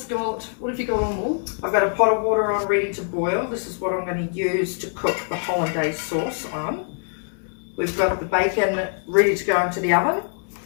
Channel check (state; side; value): silent; right; digital silence